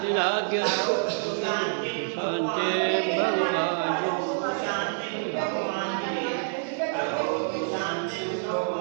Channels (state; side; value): silent; left; digital silence